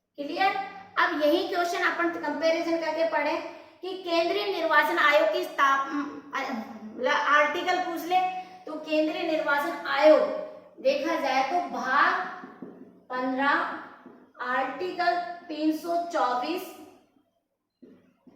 क्लियर। अब यही क्वेश्चन अपन कंपैरिजन करके पढ़े कि केंद्रीय निर्वाचन आयोग की स्थापना, आर्टिकल पूछ ले तो केंद्रीय निर्वाचन आयोग देखा जाए तो भाग 15 आर्टिकल 324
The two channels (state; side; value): identical; both; correlation 1.00